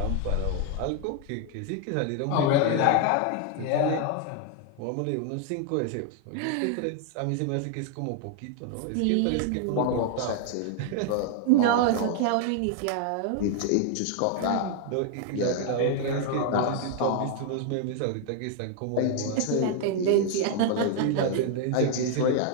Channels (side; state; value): both; different; correlation 0.00